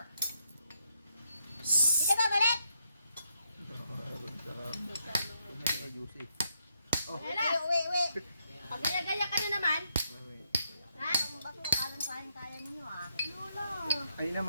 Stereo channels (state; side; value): inverted; both; correlation -0.77